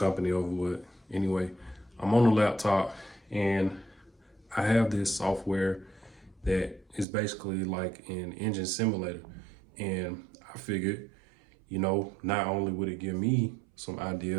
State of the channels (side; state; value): left; drops out; at 7.1 s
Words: over, but anyway, I'm on the laptop and I have this software that is basically like an engine simulator. And I figured, not only would it give me some